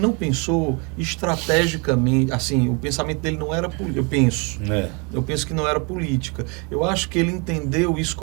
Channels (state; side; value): quieter; left; 32.2 dB